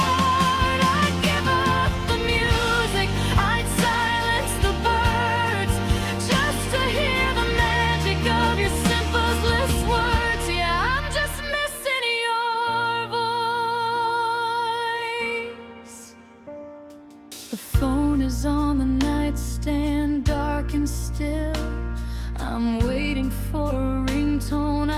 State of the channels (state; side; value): identical; both; correlation 1.00